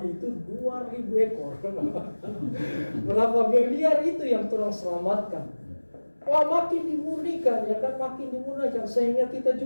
itu 2.000 ekor. Berapa miliar itu yang orang selamatkan. Wah, makin dimurnikan, ya kan, makin dimurnikan, sehingga kita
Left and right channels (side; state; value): both; inverted; correlation -1.00